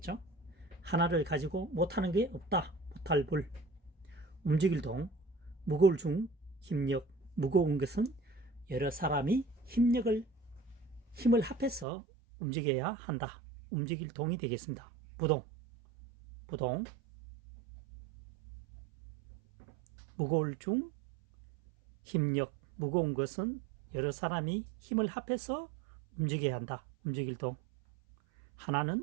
하나를 가지고 못하는 게 없다. 못할불. 움직일 동. 무거울 중 힘력. 무거운 것은 여러 사람이 힘을 합해서 움직여야 한다. 움직일 동이 되겠습니다. 부동. 무거울 중 힘력. 무거운 것은 여러 사람이 힘을 합해서 움직여야 한다. 움직일 동.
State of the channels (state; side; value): drops out; left; at 11.9 s